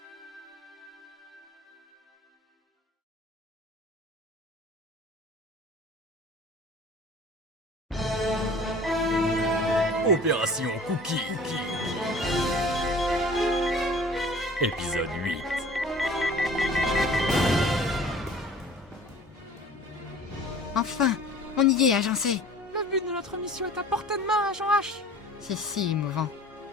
Opération Cookie. Épisode 8. Enfin, on y est, agencé. Le but de notre mission est à portée de main, Agent H. C'est si émouvant.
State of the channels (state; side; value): normal; both; correlation 0.46